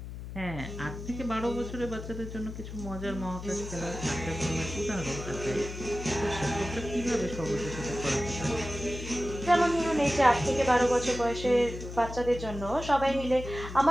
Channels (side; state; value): left; noise; hum, 10 dB below the sound